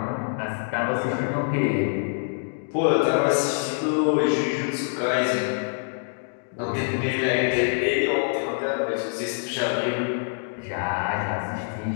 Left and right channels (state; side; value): silent; right; digital silence